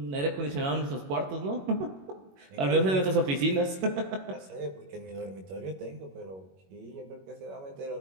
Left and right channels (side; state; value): left; late; 21 ms